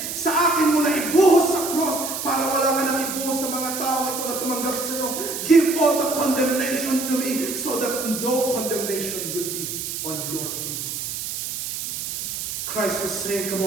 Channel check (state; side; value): noise; right; hiss, 5 dB below the sound